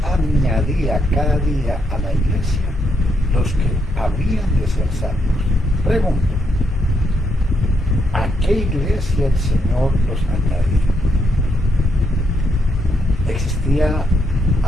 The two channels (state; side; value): normal; both; correlation 0.78